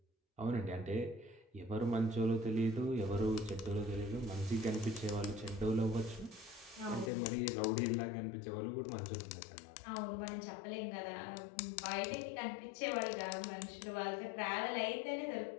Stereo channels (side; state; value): right; drops out; at 7.1 s